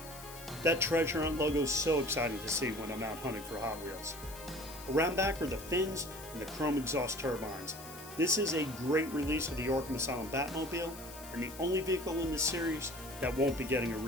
That Treasure Hunt logo is so exciting to see when I'm out hunting for Hot Wheels. Around back are the fins and the chrome exhaust turbines. This is a great release of the Arkham Asylum Batmobile, and the only vehicle in this series that won't be getting a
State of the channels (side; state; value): left; noise; hiss, 15 dB below the sound